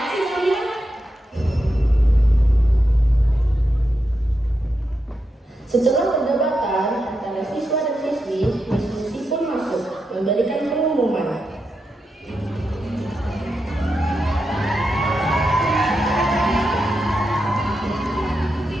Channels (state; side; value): normal; both; correlation 0.86